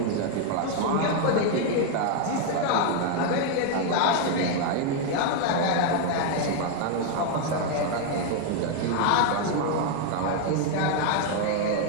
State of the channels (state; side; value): different; both; correlation 0.01